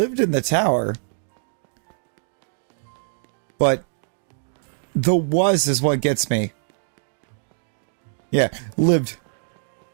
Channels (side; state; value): left; silent; digital silence